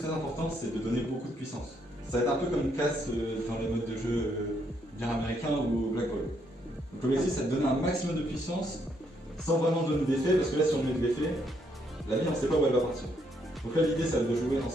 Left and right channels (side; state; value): both; normal; correlation 0.73